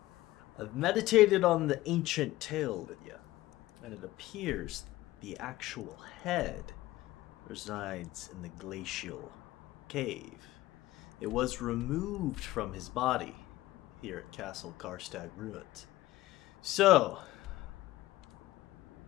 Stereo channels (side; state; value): right; quieter; 17.0 dB